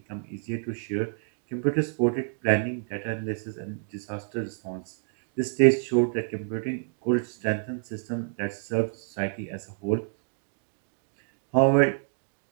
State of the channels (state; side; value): silent; left; 58 dB below the other